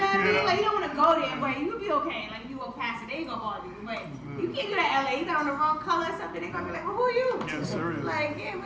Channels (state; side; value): identical; both; correlation 1.00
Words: what I mean? Like, you don't want to go there, but you'll be okay. Like, you walk past it, they ain't gonna bother you. But you can't do that LA. You got on the wrong color or something, they gonna be like, well, who are you? Yeah, serious. Like, yeah,